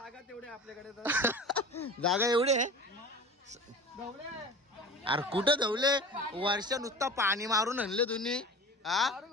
तेवढे आपल्याकडे जागा एवढी आहे अरे कुठं धवले. वर्षा नुसता पाणी मारून आणले तुम्ही. हा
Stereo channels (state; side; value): normal; both; correlation 0.36